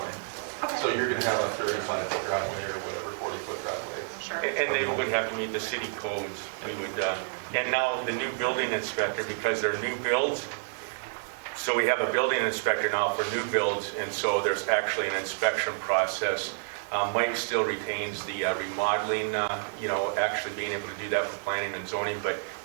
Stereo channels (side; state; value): left; silent; digital silence